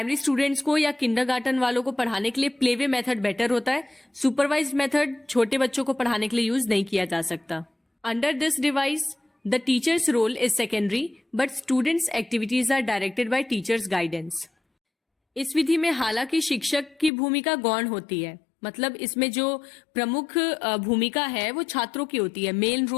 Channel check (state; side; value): drops out; right; at 17.1 s